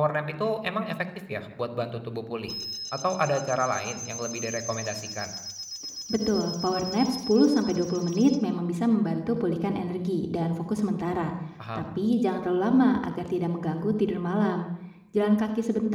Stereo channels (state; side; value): identical; both; correlation 1.00